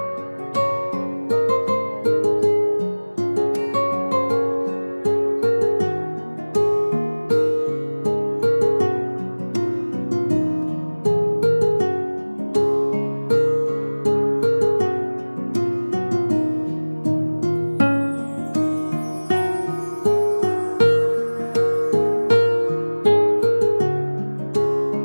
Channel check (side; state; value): both; inverted; correlation -1.00